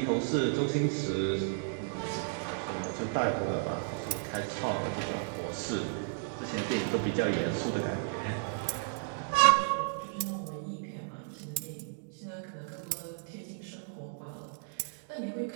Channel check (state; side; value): silent; left; digital silence